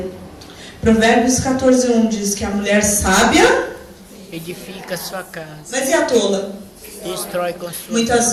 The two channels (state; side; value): identical; both; correlation 1.00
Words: Provérbios 14:1 diz que a mulher sábia edifica a sua casa. Mas e a tola? Destrói com sua.